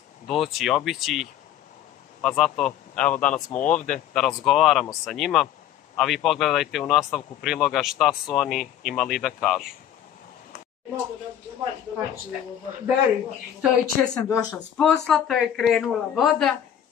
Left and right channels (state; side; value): quieter; right; 10.5 dB